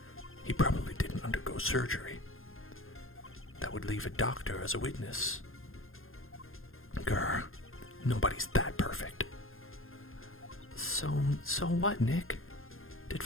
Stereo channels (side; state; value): right; late; 0.60 ms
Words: He probably didn't undergo surgery. That would leave a doctor as a witness. Grr, nobody's that perfect. So what, Nick? Did